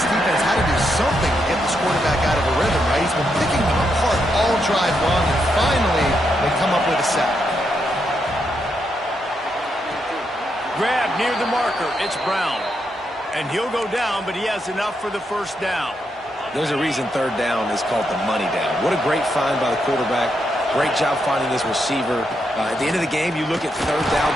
defense had to do something to get this quarterback out of a rhythm, right? He's been picking them apart all drive long, and finally they come up with a sack. Grab near the marker. It's Brown. And he'll go down, but he has enough for the first down. There's a reason 3rd down is called the money down. What a great find by the quarterback. Great job finding his receiver. At the end of the game, you look at 3rd down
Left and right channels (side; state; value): both; normal; correlation 0.81